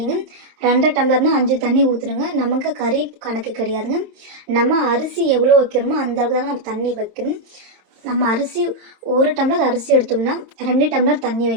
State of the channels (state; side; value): late; left; 27 ms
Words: 2 டம்ளர்னால் 5 தண்ணி ஊற்றுணுங்க. நமக்கு கறி கணக்கு கிடையாதுங்க. நம்ம அரிசி எவ்வளோ வைக்கிறோமோ அந்த அளவுக்கு தாங்க நம்ம தண்ணி வைக்கணும். நம்ம அரிசி 1 டம்ளர் அரிசி எடுத்தோம்னா 2 டம்ளர் தண்ணி